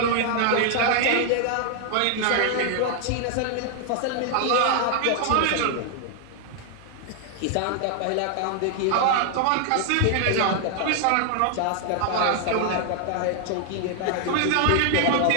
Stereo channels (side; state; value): both; different; correlation 0.00